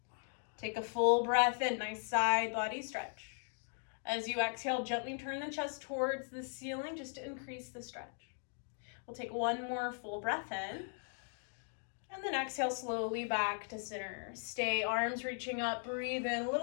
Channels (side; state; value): right; silent; 52 dB below the other